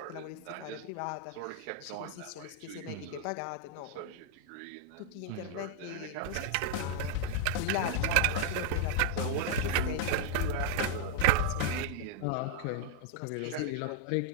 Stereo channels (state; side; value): different; both; correlation -0.01